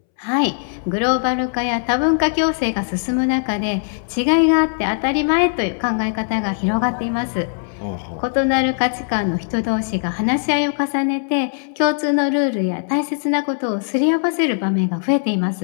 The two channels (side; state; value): right; silent; 66 dB below the other